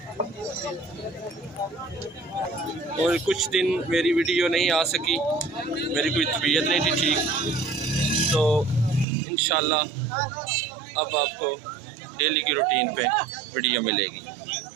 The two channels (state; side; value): drops out; left; at 9.1 s